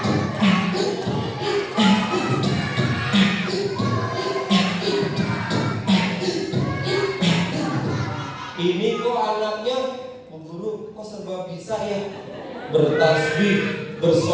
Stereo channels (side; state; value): both; identical; correlation 1.00